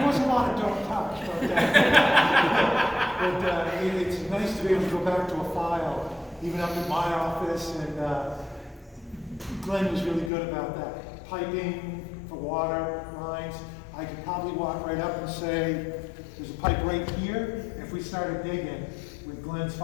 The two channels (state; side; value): drops out; right; at 10.3 s